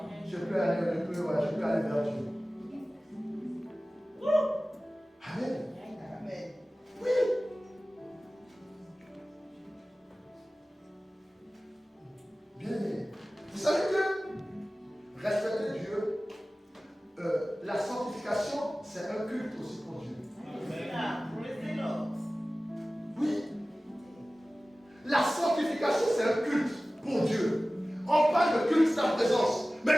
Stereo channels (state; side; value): normal; both; correlation 0.97